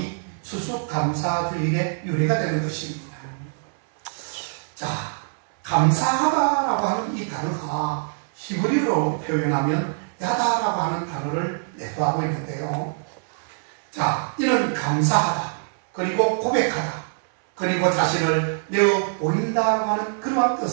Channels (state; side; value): silent; left; 63 dB below the other